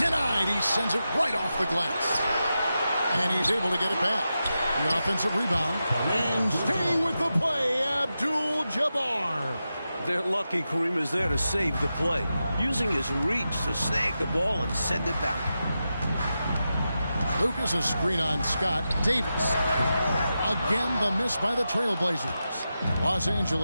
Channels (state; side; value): inverted; both; correlation -0.90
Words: He sends it right off the glass. And he's able to get it back. The offensive rebound. And staying with the play, Abdul-Jabbar. They're lucky Kareem is there to save the play, using his reach to snag the ball and send it back. Lucas, a screen on Scott. Davis. Again, the miss by the Trailblazers. Los